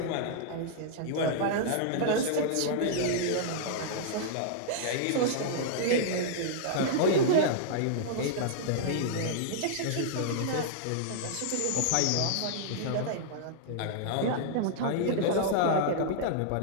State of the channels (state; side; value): different; both; correlation -0.02